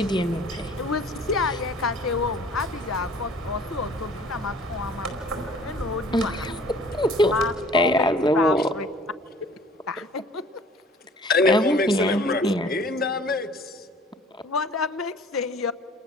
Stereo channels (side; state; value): both; normal; correlation 0.51